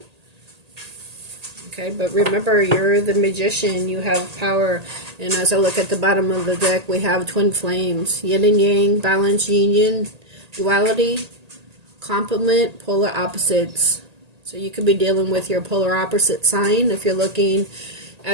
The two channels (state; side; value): late; left; 1.8 ms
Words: Okay, but remember, you're the magician. You have power. And as I look at the bottom of the deck, we have twin flames. Yin and yang, balance, union, duality, complement, polar opposites. So you could be dealing with your polar opposite sign. If you're looking